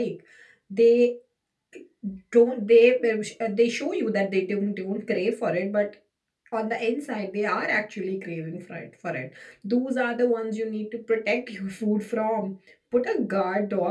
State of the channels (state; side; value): identical; both; correlation 1.00